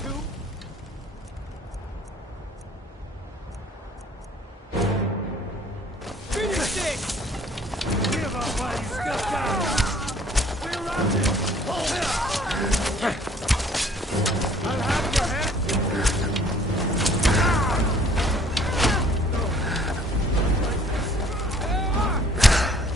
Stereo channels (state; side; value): normal; both; correlation 0.56